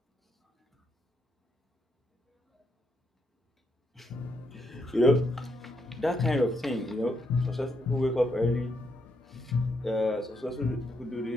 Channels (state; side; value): normal; both; correlation 0.78